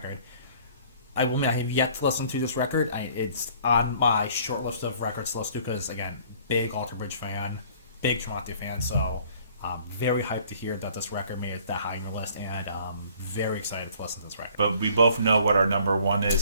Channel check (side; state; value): both; inverted; correlation -0.56